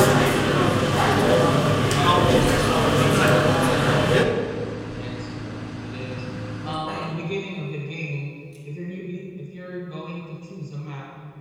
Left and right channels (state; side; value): identical; both; correlation 1.00